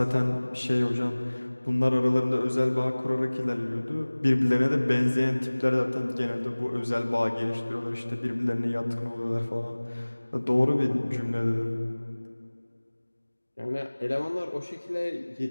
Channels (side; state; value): both; inverted; correlation -1.00